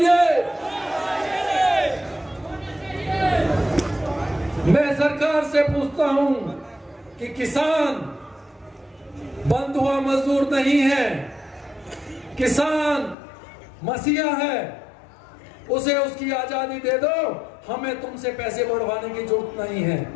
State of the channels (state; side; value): drops out; right; at 13.2 s